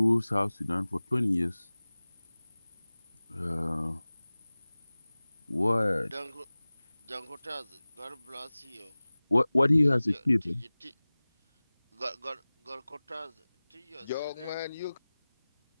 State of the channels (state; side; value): inverted; both; correlation -0.99